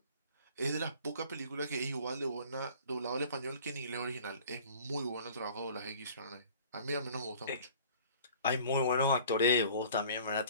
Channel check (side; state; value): both; inverted; correlation -0.49